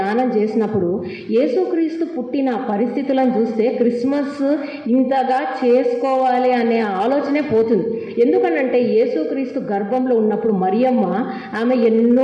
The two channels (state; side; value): identical; both; correlation 1.00